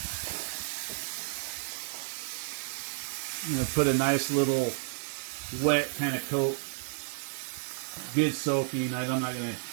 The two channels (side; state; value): left; silent; 57 dB below the other